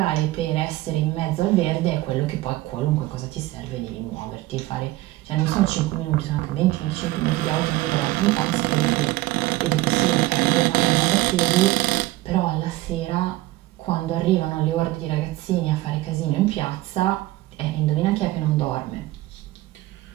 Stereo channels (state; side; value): quieter; left; 17.7 dB